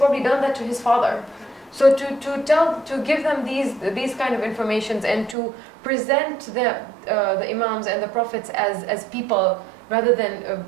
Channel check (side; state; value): left; drops out; at 5.4 s